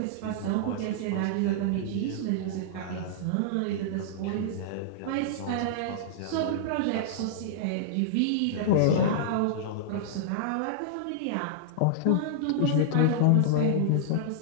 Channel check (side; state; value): both; different; correlation -0.02